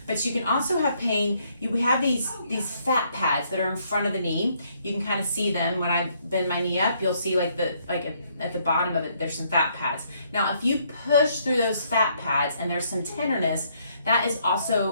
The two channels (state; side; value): inverted; both; correlation -0.70